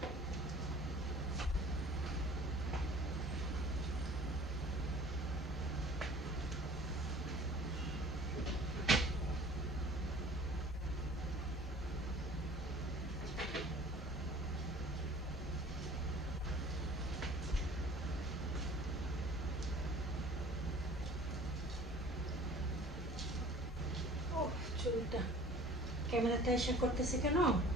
ক্যামেরাতে এসে করতেছি কেন,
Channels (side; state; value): both; normal; correlation 0.48